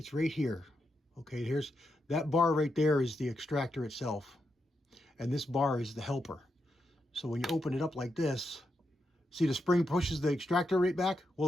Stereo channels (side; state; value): both; normal; correlation 0.84